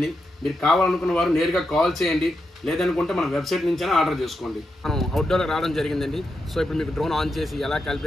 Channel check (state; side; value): normal; both; correlation 0.86